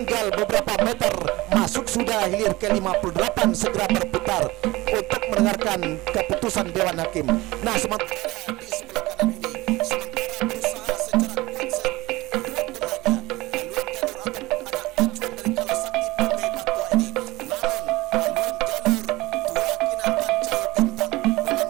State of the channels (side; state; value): left; quieter; 20.3 dB